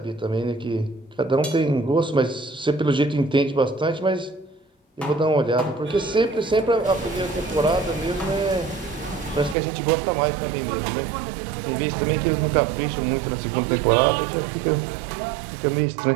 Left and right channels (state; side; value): drops out; left; at 9.6 s